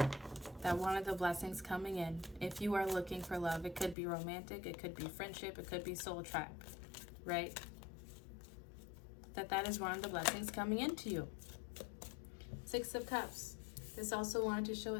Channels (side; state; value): right; drops out; at 4.0 s